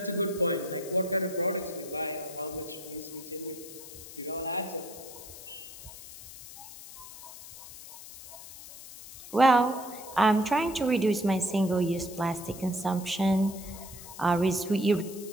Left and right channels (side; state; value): left; noise; hiss, 15 dB below the sound